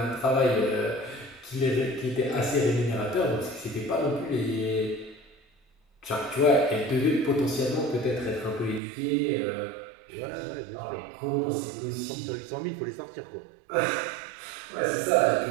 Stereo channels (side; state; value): left; drops out; at 8.8 s